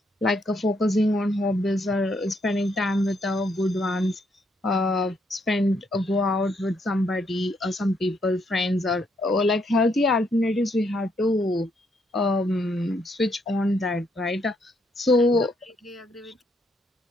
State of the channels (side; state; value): both; normal; correlation 0.74